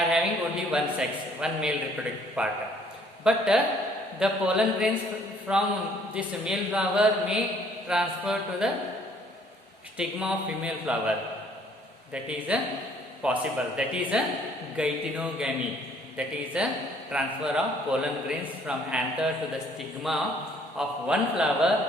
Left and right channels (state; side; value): normal; both; correlation 0.61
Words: having only one sex, one male reproductive part. But the pollen grains from this male flower may transfer to the stigma of female flower. That is possible. That is geitonogamy. That is a transfer of pollen grains from anther to the stigma of one flower